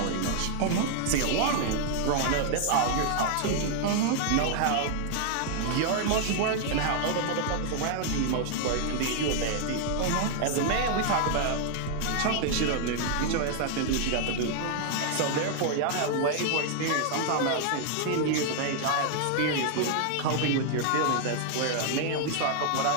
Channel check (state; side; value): different; both; correlation 0.00